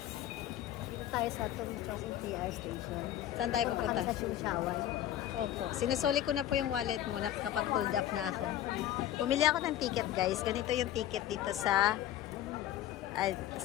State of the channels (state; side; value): quieter; right; 12.4 dB